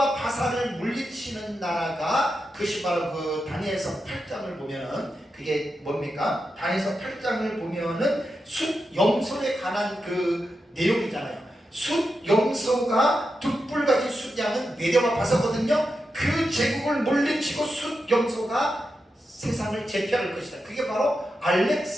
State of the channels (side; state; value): both; normal; correlation 0.88